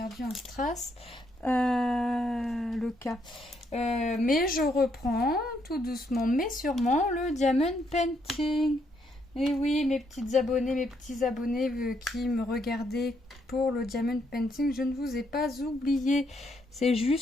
un strass, le cas. Mais je reprends tout doucement, mais sûrement, le diamond painting. Et oui, mes petites abonnées, mes petits abonnés qui me regardaient pour le diamond painting, je ne vous ai pas oublié. C'est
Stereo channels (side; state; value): both; normal; correlation 0.74